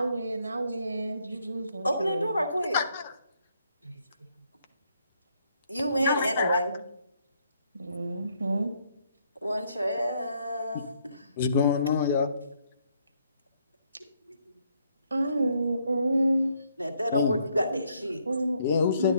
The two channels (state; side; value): inverted; both; correlation -0.71